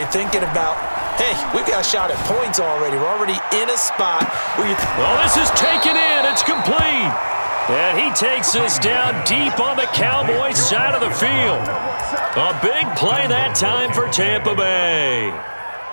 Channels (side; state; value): both; inverted; correlation -1.00